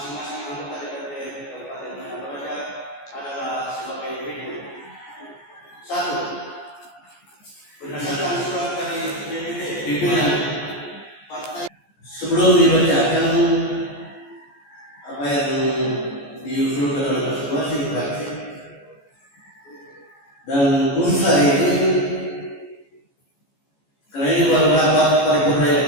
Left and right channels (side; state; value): right; late; 14 ms